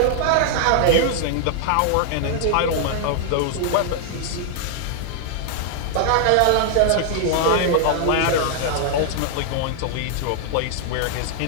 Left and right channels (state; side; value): different; both; correlation -0.01